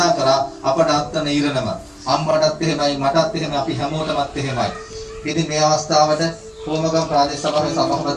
කරා අපට අත්තන ඉරණම. අම්මටත් එහෙමයි මටත් එහෙමයි අපි හැමෝටමත් එහෙමයි. ඉතින් මේ අවස්ථාවට කොමගම් ප්‍රාදේශ සභාවේ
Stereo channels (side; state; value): both; identical; correlation 1.00